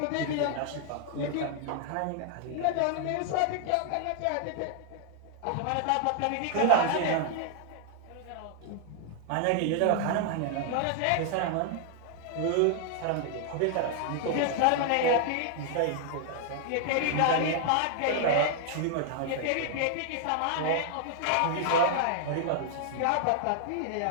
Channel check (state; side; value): different; both; correlation 0.00